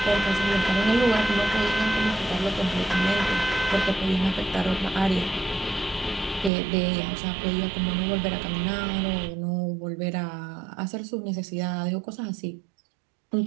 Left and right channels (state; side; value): drops out; left; at 6.5 s